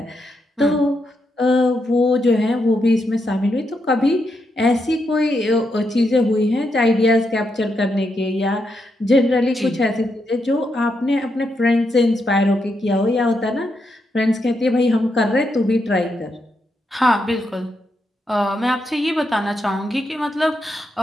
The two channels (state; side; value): normal; both; correlation 0.82